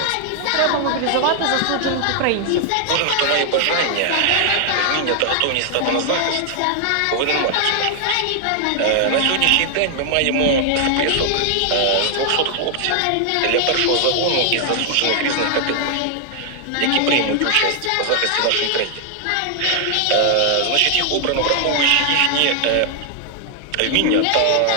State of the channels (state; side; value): different; both; correlation 0.00